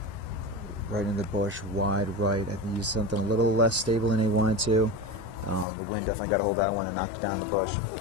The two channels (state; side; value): drops out; right; at 5.7 s